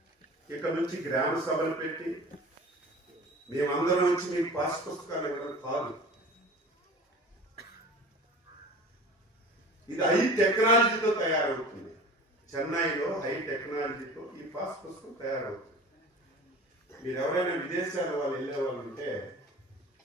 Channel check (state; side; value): normal; both; correlation 0.39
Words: ఇక నుంచి గ్రామ సభలు పెట్టి మేమందరం వచ్చి మీకు పాస్ పుస్తకాలు ఇవ్వడం కాదు. ఇది హై టెక్నాలజీతో తయారవుతుంది. చెన్నైలో హై టెక్నాలజీతో ఈ పాస్ పుస్తకం తయారవుతుంది. మీరు ఎవరైనా విదేశాల వాళ్ళు వెళ్ళే వాళ్ళు ఉంటే,